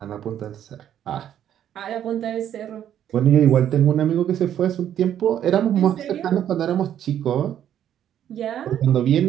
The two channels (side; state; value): left; quieter; 10.3 dB